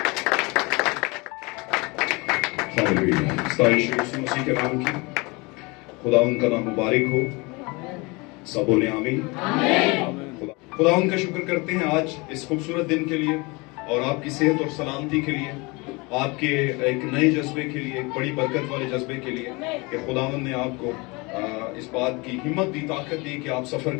ہاللیلویا. ستائش یسوع مسیح کے نام کی. خدا ان کا نام مبارک ہو. سب بولے آمین. خدا ان کا شکر کرتے ہیں آج اس خوبصورت دن کے لیے اور آپ کی صحت اور سلامتی کے لیے, آپ کے ایک نئے جذبے کے لیے, ایک بڑی برکت والے جذبے کے لیے کہ خداوند نے آپ کو اس بات کی ہمت دی, طاقت دی کہ آپ سفر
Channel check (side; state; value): right; quieter; 26.4 dB